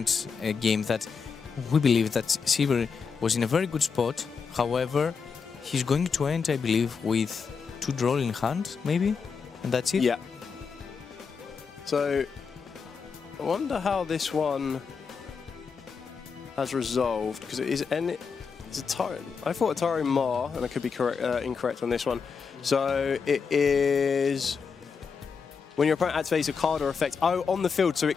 a game that we believe that Sivir was in a very good spot. However, he's going to end, I believe, with 2 draw in hand, maybe, and that's it. Yeah. So I wonder how this one has resolved, because it is Atari. I thought Atari Ma, and I could be incorrect on this one. So it is when your opponent activates a card or effect on the field, so it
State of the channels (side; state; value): right; quieter; 5.7 dB